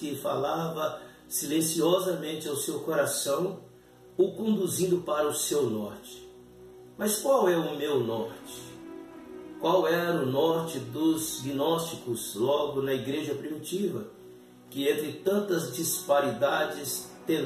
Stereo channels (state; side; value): identical; both; correlation 1.00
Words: falava silenciosamente ao seu coração, o conduzindo para o seu norte. Mas qual é o meu norte? Qual era o norte dos gnósticos logo na igreja primitiva, que entre tantas disparidades